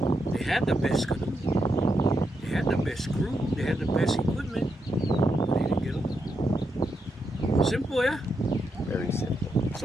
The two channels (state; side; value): normal; both; correlation 0.83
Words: They had the best canoe. They had the best crew, they had the best equipment, but they didn't get along. Simple, yeah? Very simple.